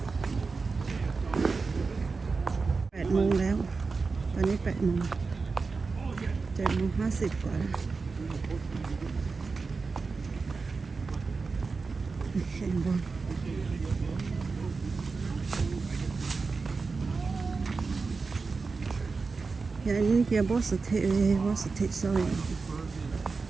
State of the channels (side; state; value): left; quieter; 4.4 dB